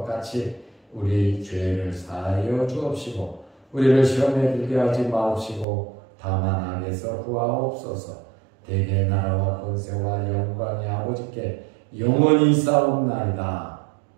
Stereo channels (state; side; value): drops out; left; at 5.7 s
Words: 같이 우리 죄를 사하여 주옵시고 우리를 시험에 들게 하지 마옵시고 다만 악에서 구하옵소서. 대개 나라와 권세와 영광이 아버지께 영원히 싸움나이다.